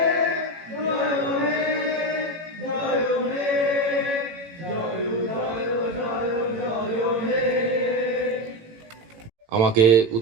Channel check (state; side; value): late; left; 18 ms